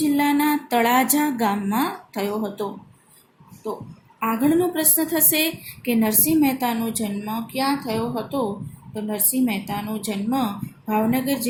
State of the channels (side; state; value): both; identical; correlation 1.00